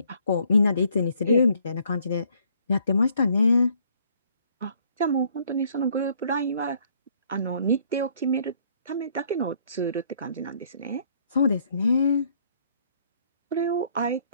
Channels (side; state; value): both; inverted; correlation -0.64